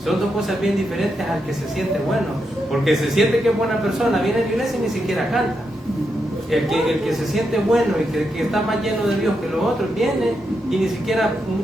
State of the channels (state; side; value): normal; both; correlation 0.83